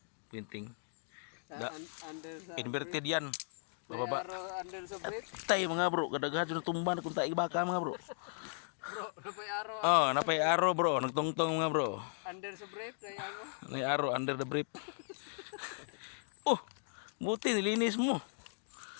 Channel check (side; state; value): right; silent; digital silence